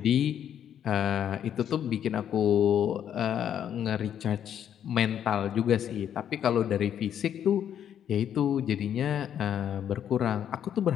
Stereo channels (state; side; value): quieter; right; 9.5 dB